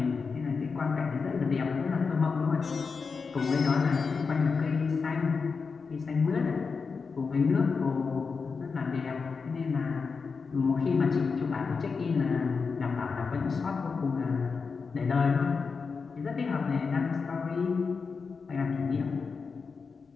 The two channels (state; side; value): quieter; right; 5.0 dB